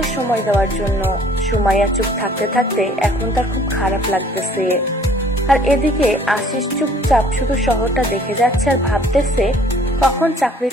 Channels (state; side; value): normal; both; correlation 0.56